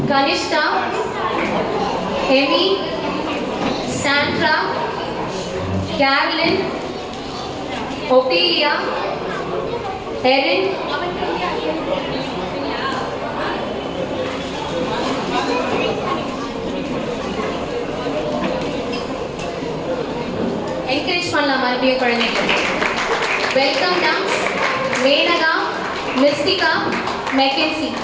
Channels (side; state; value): both; identical; correlation 1.00